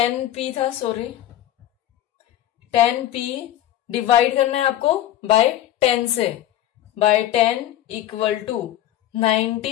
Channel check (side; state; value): right; quieter; 12.7 dB